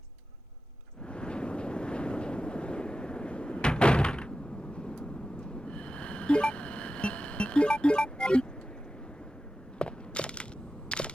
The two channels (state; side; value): normal; both; correlation 0.93